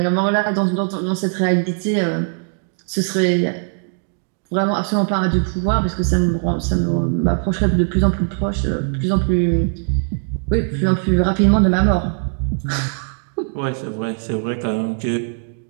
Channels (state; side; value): silent; left; 58 dB below the other